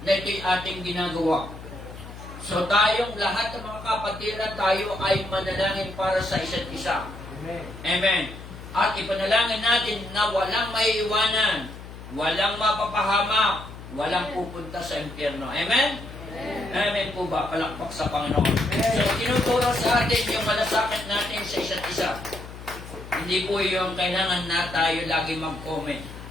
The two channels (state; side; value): noise; left; hum, 14 dB below the sound